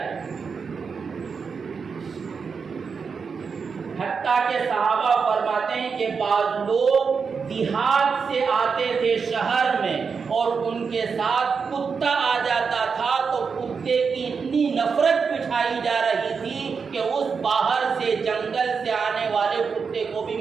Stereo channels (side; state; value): left; quieter; 5.6 dB